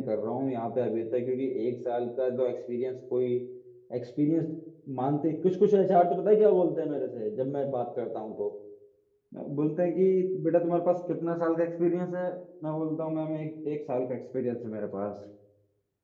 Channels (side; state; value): both; identical; correlation 1.00